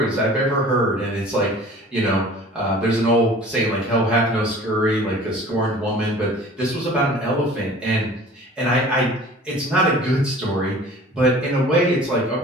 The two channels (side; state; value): both; normal; correlation 0.46